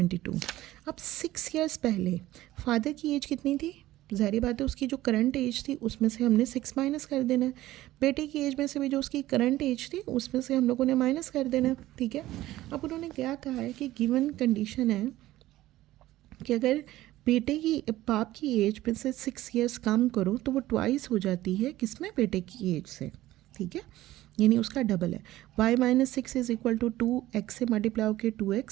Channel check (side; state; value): left; quieter; 15.8 dB